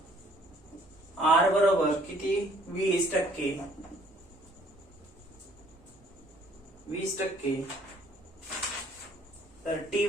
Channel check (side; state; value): both; normal; correlation 0.60